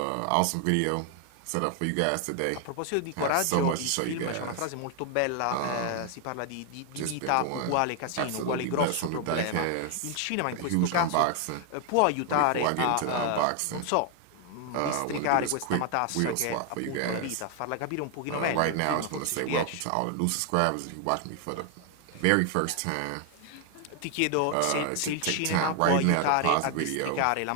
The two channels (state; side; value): different; both; correlation 0.00